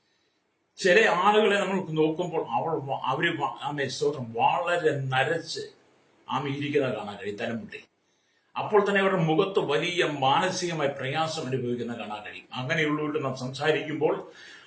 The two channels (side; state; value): both; identical; correlation 1.00